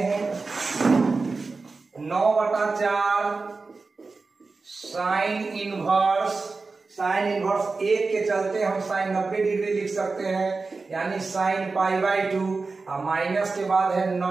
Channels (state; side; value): quieter; left; 4.0 dB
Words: 9/4 साइन इनवर्स, साइन इनवर्स 1 के चलते हम साइन 90 डिग्री लिख सकते हैं, यानी साइन π/2। और माइनस के बाद है